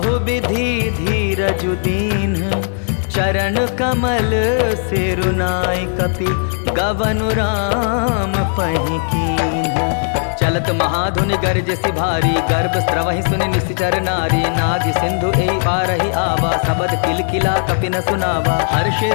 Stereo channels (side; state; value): right; silent; digital silence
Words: विधि धीरजु दीन। चरण कमल सिरुनाई कपि, गवनु राम आपहि कीन्ह। चलत महाधुनि गरजसि भारी, गर्भ स्रवहि सुनि निश्चर नारी। नाग सिंधु एहि पारहि आवा, सबद किलकिला कपिन सुनावा। हर्षे